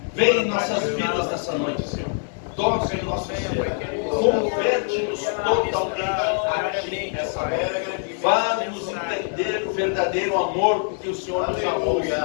vem em nossas vidas nessa noite, Senhor. Toca em nosso ser, converte-nos totalmente a Ti nessa noite. Faz-nos entender o verdadeiro amor que o Senhor nos amou.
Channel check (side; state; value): right; silent; 57 dB below the other